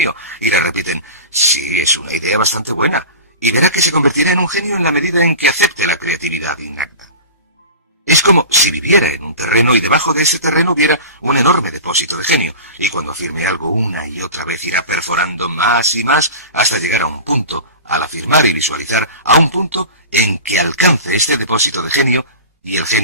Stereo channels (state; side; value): inverted; both; correlation -0.33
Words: Y le repiten, sí, es una idea bastante buena. Y verá que se convertirá en un genio en la medida en que acepte la creatividad innata. Es como si viviera en un terreno y debajo de ese terreno hubiera un enorme depósito de genio. Y cuando afirme algo una y otra vez irá perforando más y más hasta llegar a un punto, al afirmar y visualizar, a un punto en que alcance este depósito de genio y el